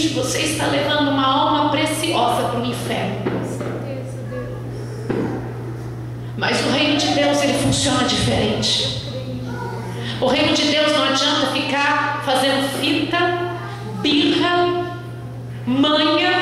você está levando uma alma preciosa para o inferno. Com certeza, Deus. Mas o reino de Deus, ele funciona diferente. O reino de Deus não adianta ficar fazendo fita, birra,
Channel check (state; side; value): identical; both; correlation 1.00